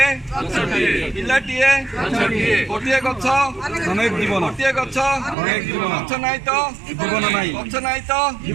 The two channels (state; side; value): drops out; left; at 5.4 s